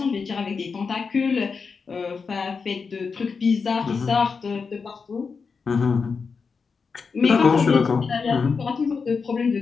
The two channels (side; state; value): right; quieter; 5.2 dB